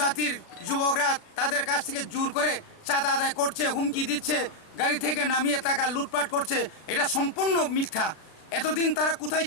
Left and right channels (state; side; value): late; right; 36 ms